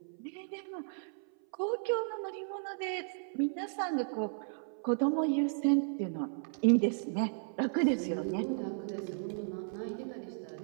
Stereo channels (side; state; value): left; silent; 55 dB below the other